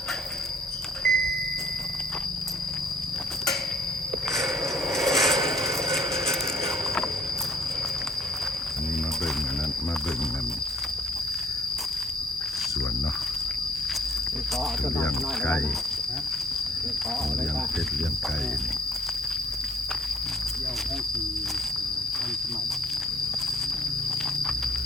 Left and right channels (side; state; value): both; normal; correlation 0.59